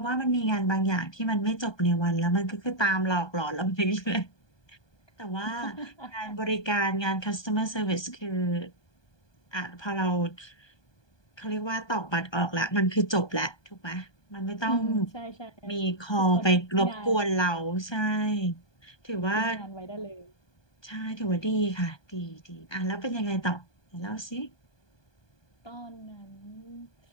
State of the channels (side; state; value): right; late; 1.2 ms